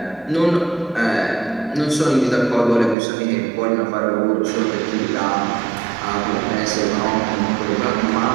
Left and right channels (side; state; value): left; drops out; at 3.0 s